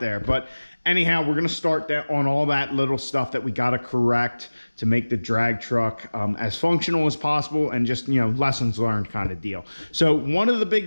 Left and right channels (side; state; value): both; inverted; correlation -1.00